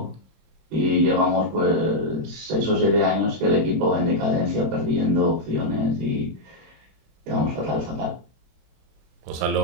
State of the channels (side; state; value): left; late; 26 ms